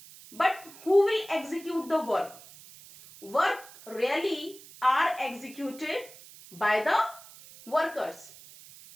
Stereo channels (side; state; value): right; noise; hiss, 19 dB below the sound